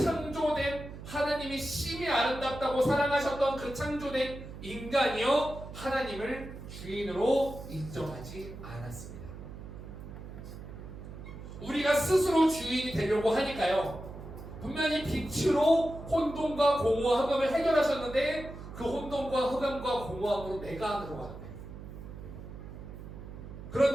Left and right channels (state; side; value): noise; right; hum, 12 dB below the sound